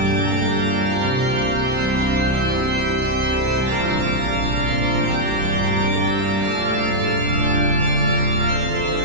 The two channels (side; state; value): left; late; 31 ms